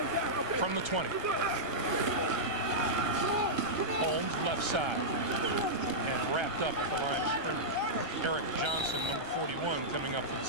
From the 20. Holmes left side and wrapped up at the line of scrimmage. Eric Johnson, number 41, coming up for the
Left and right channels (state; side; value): late; left; 1.3 ms